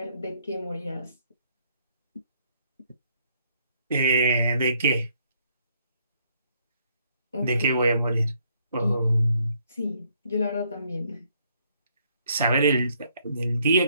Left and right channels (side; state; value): both; inverted; correlation -0.69